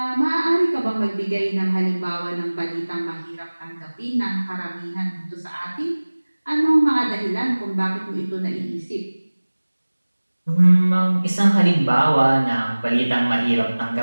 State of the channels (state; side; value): inverted; both; correlation -1.00